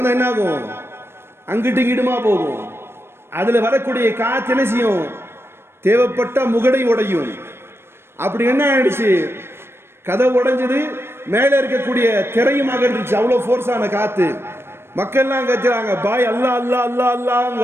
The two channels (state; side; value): late; left; 0.12 ms